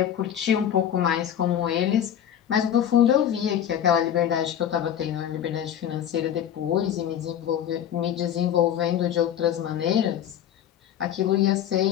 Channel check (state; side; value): quieter; right; 10.0 dB